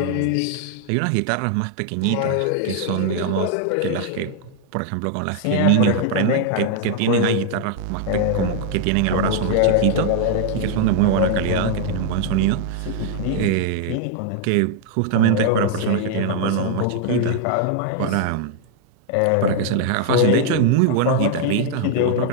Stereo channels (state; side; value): different; both; correlation 0.00